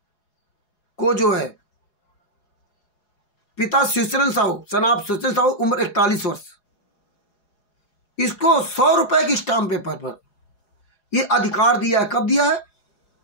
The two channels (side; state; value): right; late; 4.8 ms